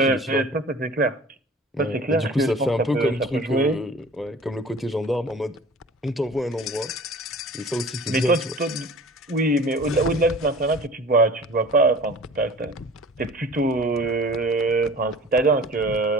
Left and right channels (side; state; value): both; normal; correlation 0.43